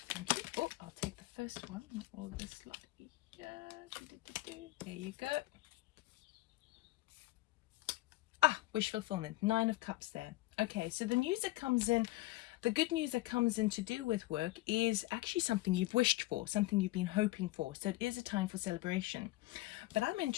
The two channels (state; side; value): quieter; right; 19.1 dB